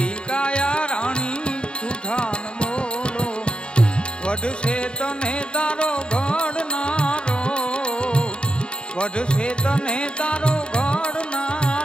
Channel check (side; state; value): right; late; 0.052 ms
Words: काया रानी झूठा न बोलो। वध से तने तारो घड़नारो, वध से तने तारो